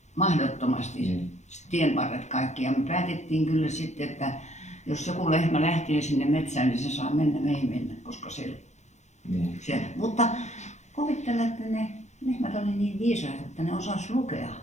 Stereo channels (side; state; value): right; late; 0.33 ms